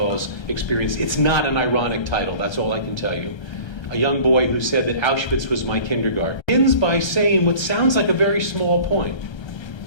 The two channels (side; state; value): right; late; 1.3 ms